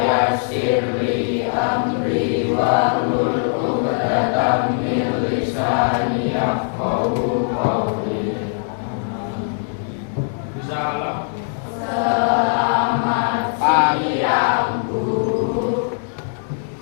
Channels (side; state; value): right; silent; digital silence